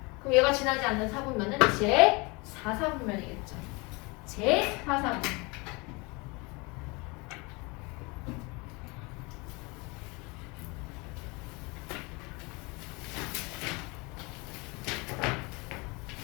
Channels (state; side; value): quieter; right; 27.0 dB